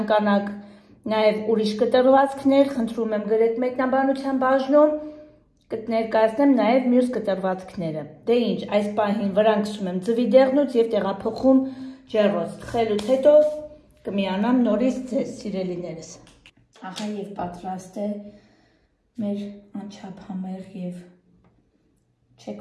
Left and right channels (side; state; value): both; identical; correlation 1.00